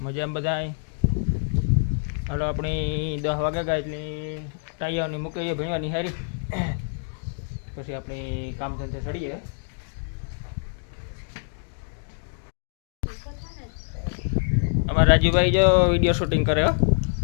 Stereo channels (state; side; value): silent; right; digital silence